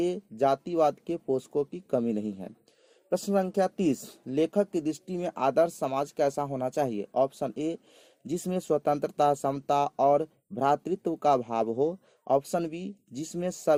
जातिवाद के पोषकों की कमी नहीं है। प्रश्न संख्या 30, लेखक की दृष्टि में आदर्श समाज कैसा होना चाहिए? ऑप्शन ए जिसमें स्वतंत्रता, समता और भ्रातृत्व का भाव हो। ऑप्शन बी जिसमें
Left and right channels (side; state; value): both; identical; correlation 1.00